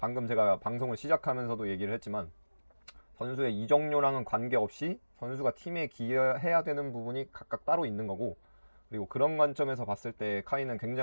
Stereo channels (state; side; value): inverted; both; correlation -1.00